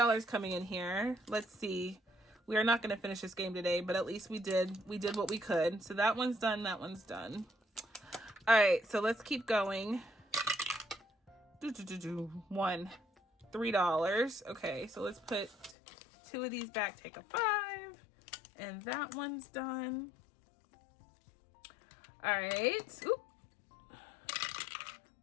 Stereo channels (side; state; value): right; drops out; at 15.8 s